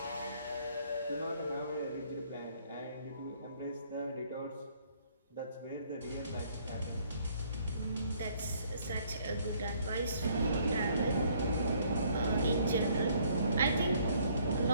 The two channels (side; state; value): both; inverted; correlation -0.64